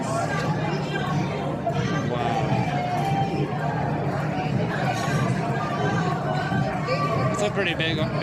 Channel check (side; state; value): both; identical; correlation 1.00